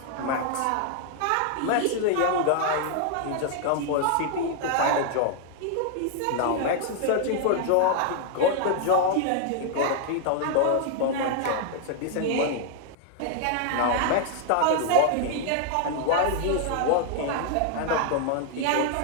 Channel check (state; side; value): different; both; correlation 0.00